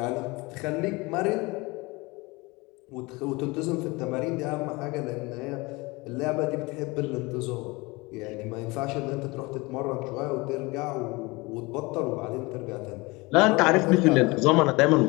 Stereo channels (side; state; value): right; quieter; 24.3 dB